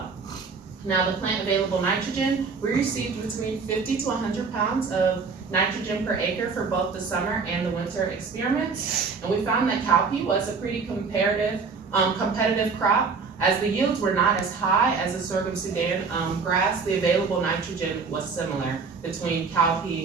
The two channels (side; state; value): left; quieter; 5.0 dB